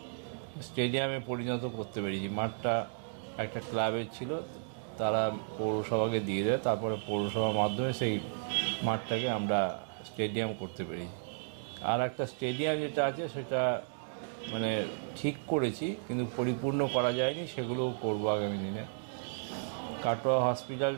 স্টেডিয়ামে পরিণত করতে পেরেছি। মাঠটা একটা ক্লাবের ছিল, তারা পৌরসভাকে দিয়ে দেয়, তারপরে পৌরসভার মাধ্যমে সেই মাঠটাকে আমরা স্টেডিয়াম করতে পেরেছি। আর একটা স্টেডিয়াম যেটা আছে সেটা মানে ঠিক করেছি কিন্তু পরিপূর্ণ করা যায়নি, সেগুলোও করবো আগামী দিনে। কাটোয়া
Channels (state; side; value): silent; left; digital silence